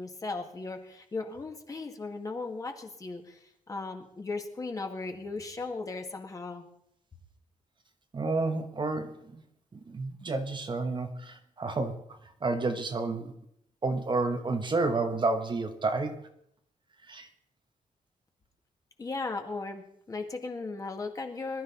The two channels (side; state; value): both; normal; correlation 0.70